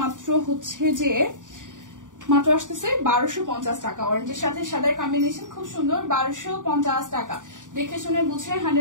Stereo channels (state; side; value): late; left; 0.87 ms